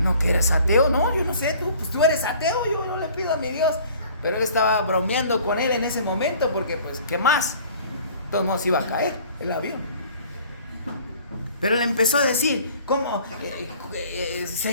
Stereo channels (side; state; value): both; inverted; correlation -0.51